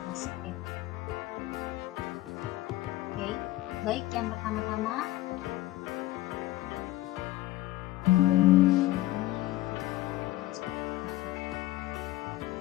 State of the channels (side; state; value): right; quieter; 16.8 dB